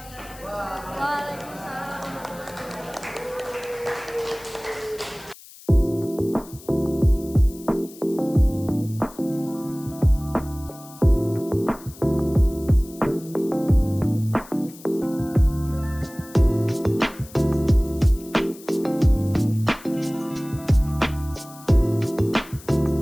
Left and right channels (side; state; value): left; noise; hiss, 20 dB below the sound